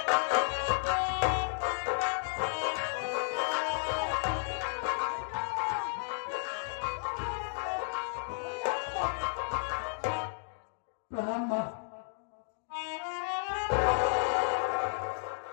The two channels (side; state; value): right; silent; digital silence